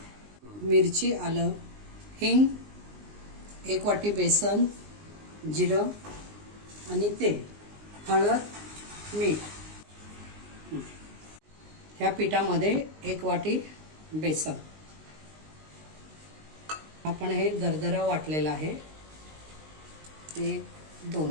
मिरची, आलं, हिंग, 1 वाटी बेसन, जिरं आणि तेल, हळद, मीठ। ह्या पिठामध्ये 1 वाटी बेसन। आपण हे दरदरा वाटलेलं आहे, ते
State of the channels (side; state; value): left; late; 19 ms